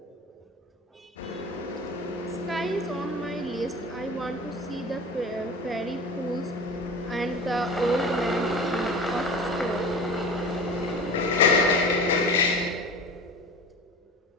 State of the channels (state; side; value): normal; both; correlation 0.35